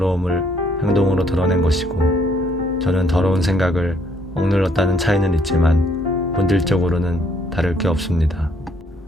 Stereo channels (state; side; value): normal; both; correlation 0.67